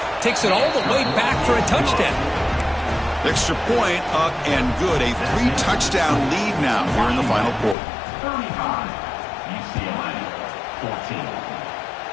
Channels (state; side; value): drops out; right; at 7.8 s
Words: Takes it all the way back for a touchdown. Extra point up and good. A 3-touchdown lead now here in the final quarter. 35, UCLA, 14.